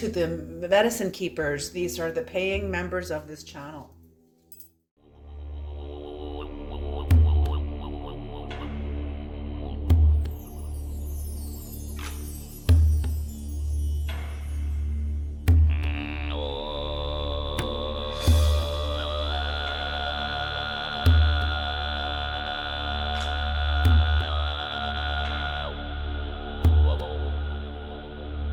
the medicine keepers. These are the paying members of this channel.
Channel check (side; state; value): both; identical; correlation 1.00